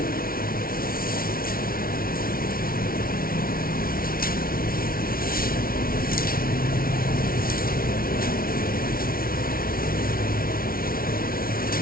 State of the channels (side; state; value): right; late; 0.43 ms